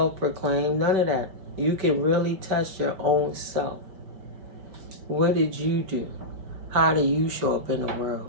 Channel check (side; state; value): left; late; 5.2 ms